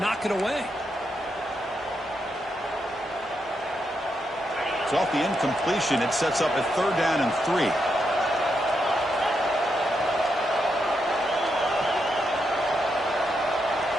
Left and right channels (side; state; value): both; normal; correlation 0.82